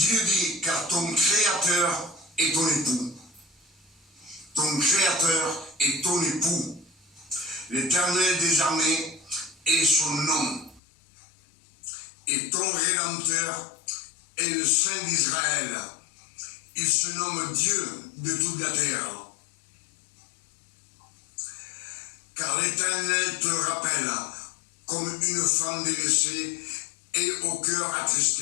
dit, car ton Créateur est ton époux. Ton Créateur est ton époux. L'Éternel des armées est son nom. Et ton Rédempteur est le Saint d'Israël. Il se nomme Dieu de toute la terre. Car l'Éternel te rappelle comme une femme délaissée et au cœur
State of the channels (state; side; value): drops out; right; at 10.8 s